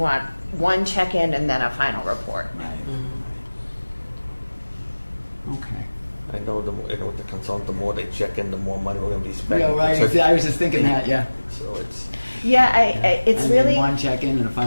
one check-in and then a final report? Right. Okay. I know with the consultant, the more they check in, the more money we're gonna be spending. Yeah, right. So- I was just thinking that. Yeah. So it's, Yeah, it's I mean, really, one check-in and a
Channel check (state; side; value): inverted; both; correlation -1.00